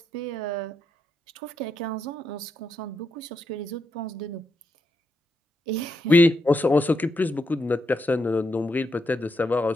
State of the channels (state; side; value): normal; both; correlation 0.81